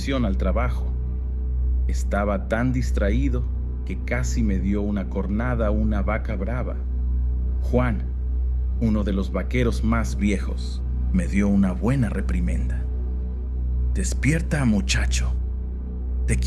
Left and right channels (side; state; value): both; identical; correlation 1.00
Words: al trabajo. Estaba tan distraído que casi me dio una cornada una vaca brava. Juan, uno de los vaqueros más viejos, me dio una buena reprimenda. «Despierta, muchacho. ¿Te